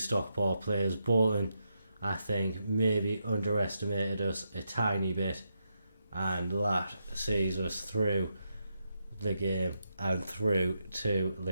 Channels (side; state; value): both; inverted; correlation -0.83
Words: Stockport players. Bolton, I think, maybe underestimated us a tiny bit, and that sees us through the game and through to